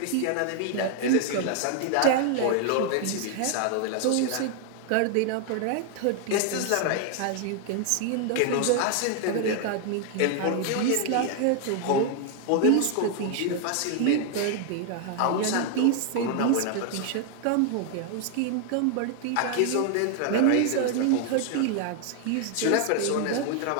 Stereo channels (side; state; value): both; different; correlation 0.00